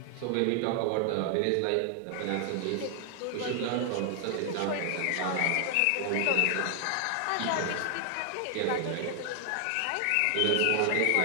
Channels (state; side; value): different; both; correlation 0.00